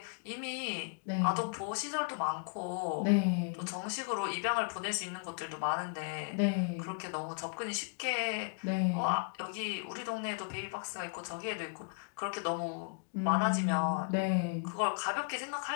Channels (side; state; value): right; quieter; 38.5 dB